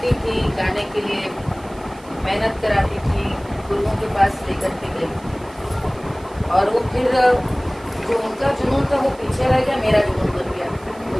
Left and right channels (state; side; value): noise; right; hiss, 25 dB below the sound